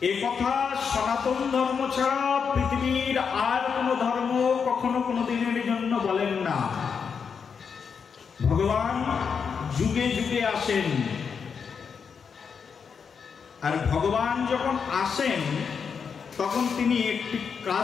এ কথা সনাতন ধর্ম ছাড়া পৃথিবীর আর কোনো ধর্ম কখনো কোনো দিনের জন্য বলেন না। ভগবান যুগে যুগে আসেন, আর ভগবান যখন আসেন তখন তিনি একটি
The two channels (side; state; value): right; quieter; 6.3 dB